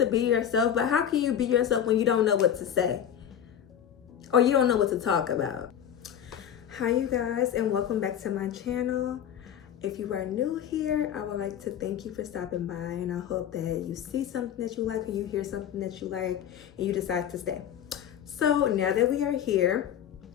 be yourself, but how can you be yourself when you don't know what to say? Or you don't know what to talk about? Hi you guys, and welcome back to my channel. If you are new here, I would like to thank you for stopping by, and I hope that you see something that you like, or you hear something that you like, and you decide to stay. So now that we are here,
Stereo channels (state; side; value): quieter; right; 9.5 dB